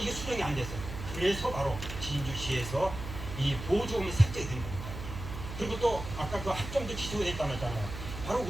수정이 안 됐어요. 그래서 바로 진주시에서 이 보조금이 삭제가 된 겁니다. 그리고 또 아까 그 합정도 취소가 됐다고 했잖아요. 바로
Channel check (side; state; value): right; noise; hum, 8 dB below the sound